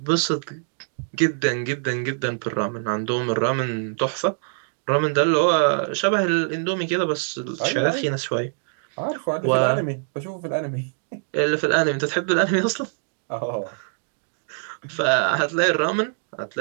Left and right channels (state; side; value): silent; left; digital silence